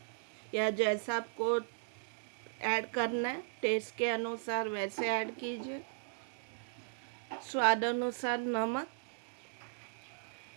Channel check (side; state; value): left; silent; digital silence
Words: या जैसा आपको ऐड करना है टेस्ट के अनुसार वैसे ऐड कीजिए। स्वाद अनुसार नमक,